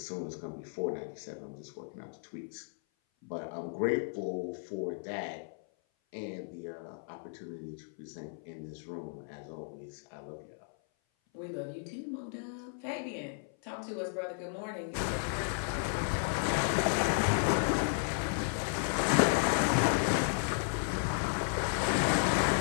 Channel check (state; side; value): silent; right; 55 dB below the other